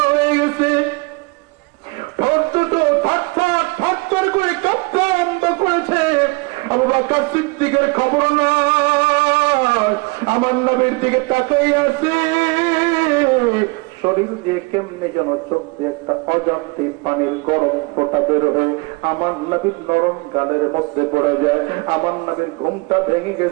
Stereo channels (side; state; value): left; quieter; 27.8 dB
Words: হয়ে গেছে। করে কাঁপতে আরম্ভ করেছে। আবু বকর সিদ্দিকের খবর না, আমার নবীর দিকে তাকাই আছে। শরীর দিয়ে কেমনে যেন চোখ দিয়ে একটা অজান্তে পানির গরম ফোঁটা বের হয়ে আমার নবীর নরম গালের মধ্যে পড়ে যায়। আমার নবীর ঘুমটা ভেঙে